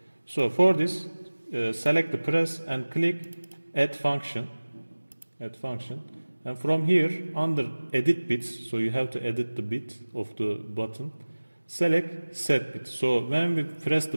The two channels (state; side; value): inverted; both; correlation -1.00